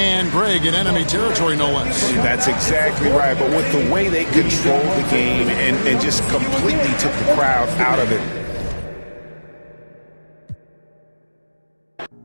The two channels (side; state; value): both; inverted; correlation -1.00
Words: Greg in enemy territory, no less. That's exactly right. But with the way they controlled the game and just completely took the crowd out of it.